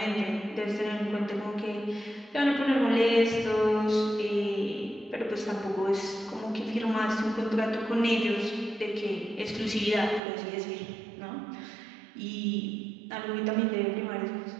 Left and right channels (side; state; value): left; drops out; at 10.2 s